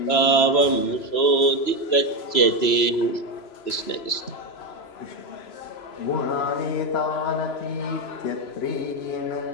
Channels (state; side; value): late; right; 3.0 ms